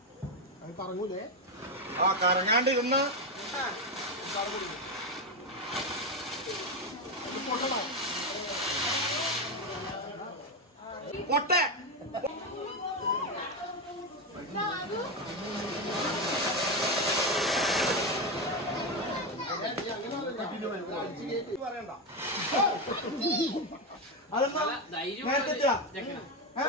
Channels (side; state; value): both; normal; correlation 0.11